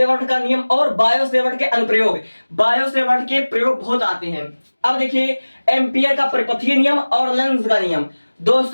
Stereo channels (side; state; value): both; inverted; correlation -1.00